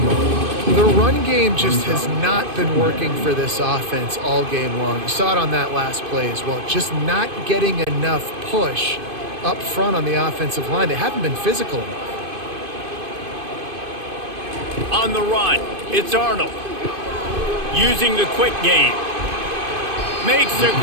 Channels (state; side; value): late; left; 2.5 ms